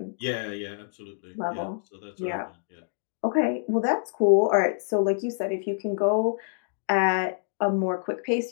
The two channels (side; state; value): right; silent; digital silence